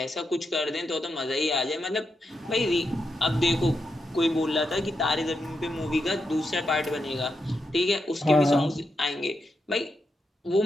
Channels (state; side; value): normal; both; correlation 0.85